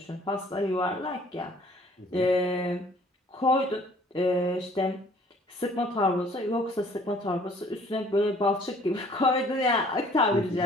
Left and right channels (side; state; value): both; normal; correlation 0.56